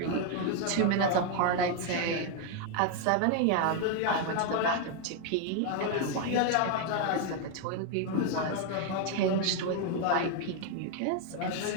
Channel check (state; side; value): different; both; correlation 0.01